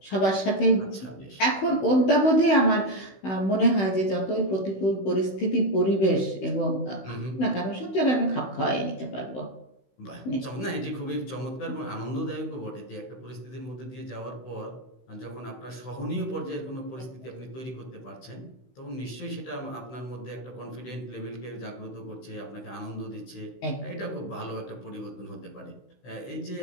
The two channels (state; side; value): late; right; 16 ms